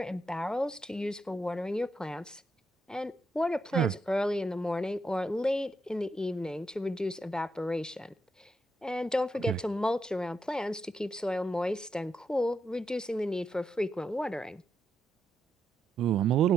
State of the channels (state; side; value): normal; both; correlation 0.82